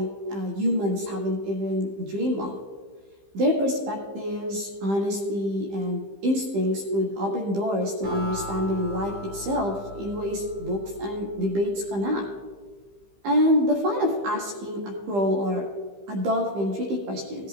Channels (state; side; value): late; left; 15 ms